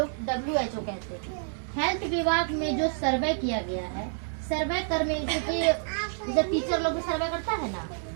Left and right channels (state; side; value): silent; left; digital silence